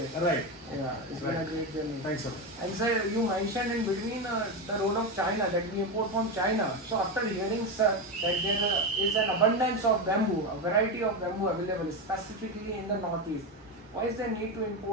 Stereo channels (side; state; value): both; normal; correlation 0.14